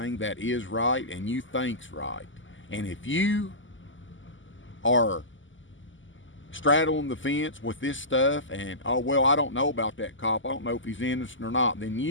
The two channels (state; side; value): late; right; 0.55 ms